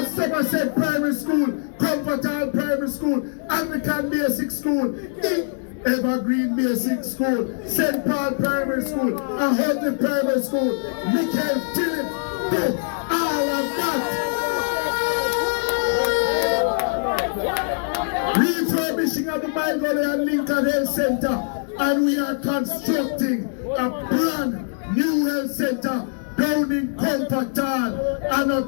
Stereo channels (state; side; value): silent; right; 64 dB below the other